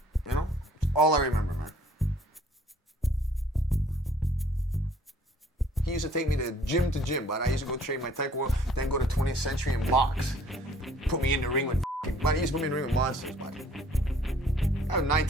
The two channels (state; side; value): normal; both; correlation 0.57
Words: You know? All I remember, man. He used to take me to gym, but I used to go train my taekwondo, then go to 20th Century and box. Put me in the ring with he used to put me in the ring with monsters, bud. I was 9,